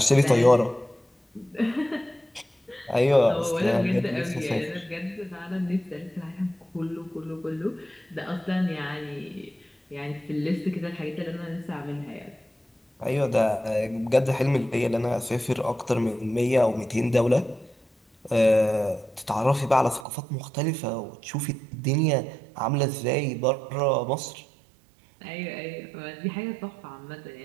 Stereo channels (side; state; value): left; drops out; at 20.1 s